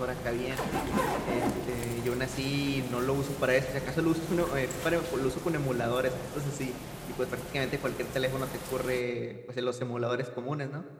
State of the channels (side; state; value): both; identical; correlation 1.00